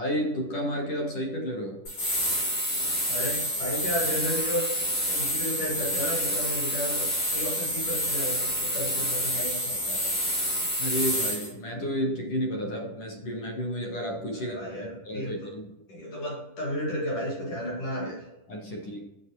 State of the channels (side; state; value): right; late; 10 ms